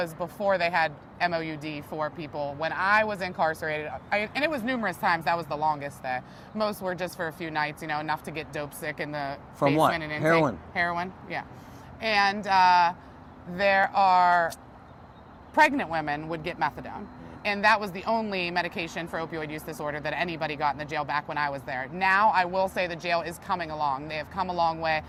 before they had MOUD for people. When I was incarcerated, and it was numerous times, that was the longest day. Most were just for a few nights, enough to get dope sick in the From what? basement and intake. Heroin? Heroin, yeah. And there are pregnant women would get methadone. And that was the only medication for opioid use disorder that anybody got in the jail back when I was there. Now, I will say the jail is coming along. They have come a long way.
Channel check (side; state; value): both; identical; correlation 1.00